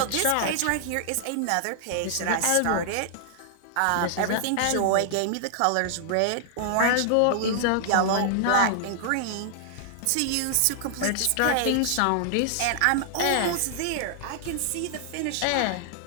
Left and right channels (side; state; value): both; different; correlation -0.01